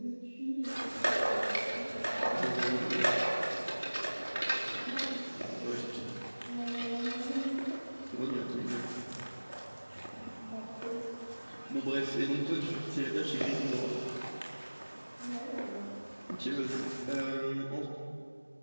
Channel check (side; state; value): both; inverted; correlation -1.00